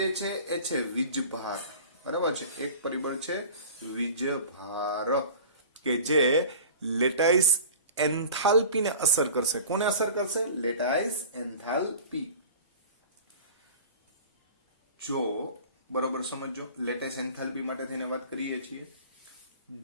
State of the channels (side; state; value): both; inverted; correlation -0.41